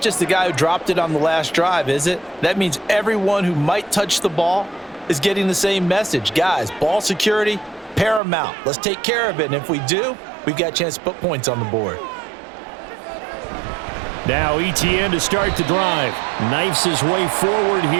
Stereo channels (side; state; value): left; drops out; at 8.2 s